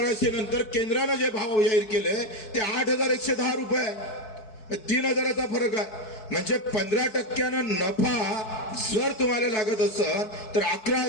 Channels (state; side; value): late; right; 4.6 ms